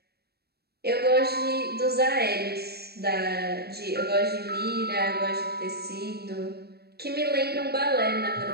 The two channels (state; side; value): late; left; 0.46 ms